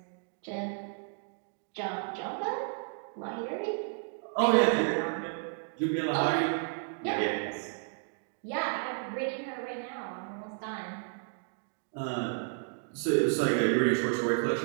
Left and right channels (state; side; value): silent; left; 56 dB below the other